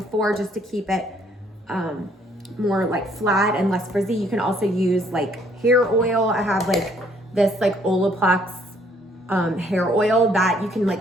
just to keep it more like flat and less frizzy. You can also use like hair oil. I have like this like Olaplex hair oil that you can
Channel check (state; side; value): normal; both; correlation 0.65